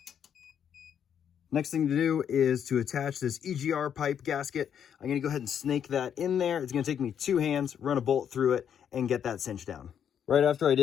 Next thing to do is to attach this EGR pipe gasket. I'm going to go ahead and snake that in there. It's going to take me 2 hands, run a bolt through it, and get that cinched down. Right after I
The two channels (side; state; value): right; quieter; 8.6 dB